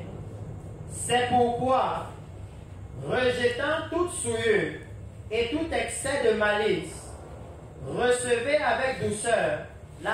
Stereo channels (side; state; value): both; identical; correlation 1.00